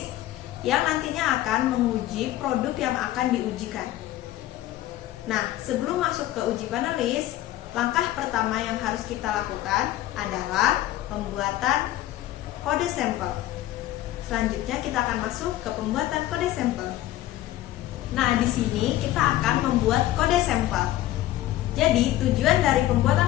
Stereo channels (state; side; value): quieter; right; 14.7 dB